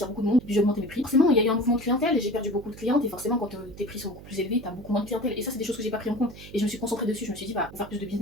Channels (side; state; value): right; noise; hum, 16 dB below the sound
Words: beaucoup de monde. Puis, j'ai augmenté mes prix. Forcément, il y a eu un mouvement de clientèle et j'ai perdu beaucoup de clientes. Et forcément, quand tes prix sont beaucoup plus élevés, t'as beaucoup moins de clientèle. Et ça, c'est des choses que j'ai pas pris en compte. Et je me suis concentrée dessus. Je me suis dit, bah, pour faire plus de